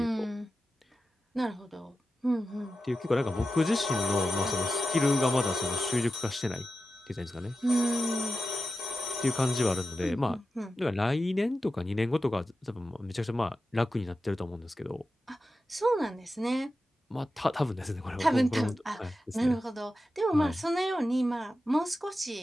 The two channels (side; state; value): both; normal; correlation 0.92